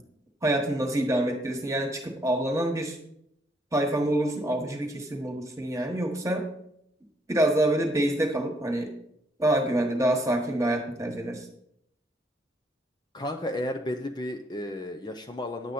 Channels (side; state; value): both; normal; correlation 0.69